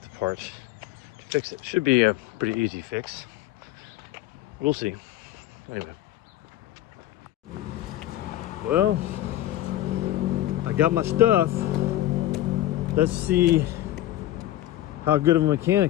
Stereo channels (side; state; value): right; quieter; 14.2 dB